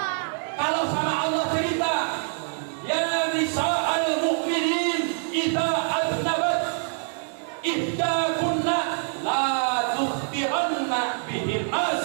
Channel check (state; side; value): silent; left; 61 dB below the other